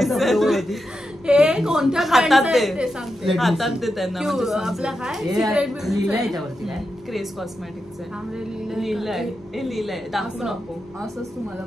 हे कोणत्या हातात ब्रँडचं आहे दे. ते सांगते. हातात दे त्यांना. आपलं काय हे सिक्रेट लिहिलंय याच्यावरती काय? क्रेज कॉस्मेटिक्स आहे. लिहिलंय. लिहिलंय, हे लिहिलंय, दाखवू नको. असंच तुम्हाला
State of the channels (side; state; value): both; normal; correlation 0.88